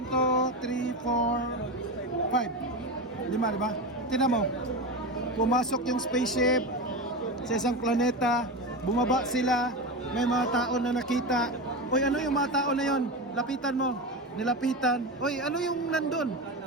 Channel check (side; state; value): both; normal; correlation 0.20